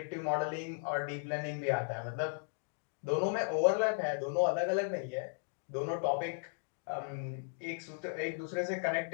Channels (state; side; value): silent; right; 54 dB below the other